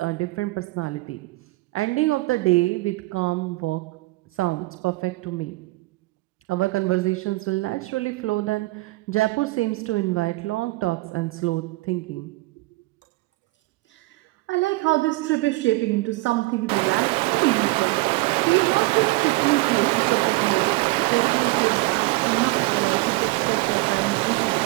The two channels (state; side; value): quieter; left; 21.4 dB